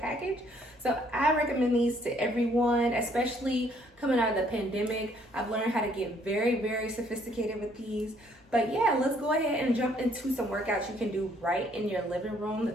So I recommend these to everyone, especially coming out of the pandemic. I've learned how to get very, very sophisticated with these. But yeah, let's go ahead and jump into some workouts you can do right in your living room, the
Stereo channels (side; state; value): both; normal; correlation 0.65